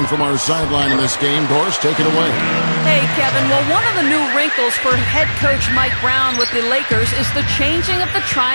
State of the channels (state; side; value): inverted; both; correlation -1.00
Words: from our sideline in this game. Doris, take it away. Hey, Kevin. Well, one of the new wrinkles for head coach Mike Brown with the Lakers is the changing of the